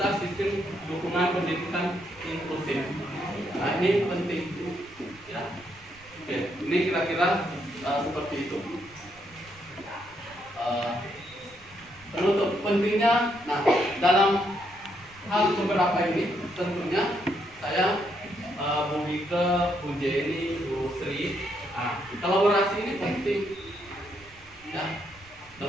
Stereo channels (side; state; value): right; noise; rumble, 26 dB below the sound